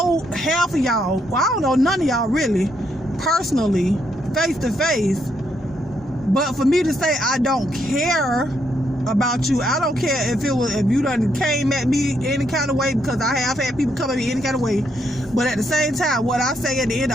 half of y'all. Well, I don't know none of y'all really, personally, face to face. But for me to say I don't care about you, I don't care if you done came at me any kind of way, because I have had people come at me any kind of way. But at the same time, what I say at the end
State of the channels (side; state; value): both; normal; correlation 0.76